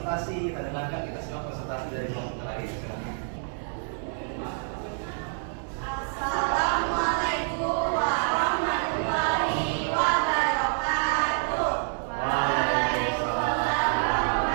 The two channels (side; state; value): left; silent; 60 dB below the other